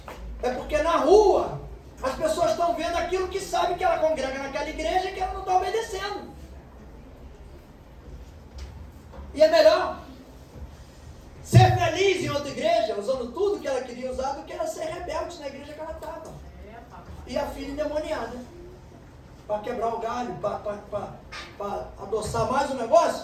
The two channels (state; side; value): identical; both; correlation 1.00